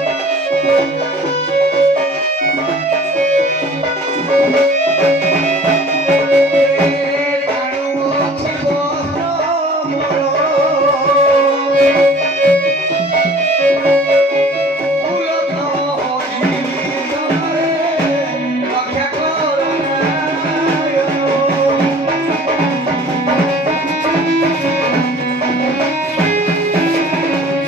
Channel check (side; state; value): both; normal; correlation 0.49